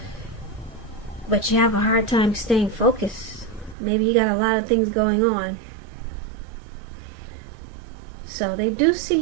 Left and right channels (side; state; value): left; drops out; at 3.8 s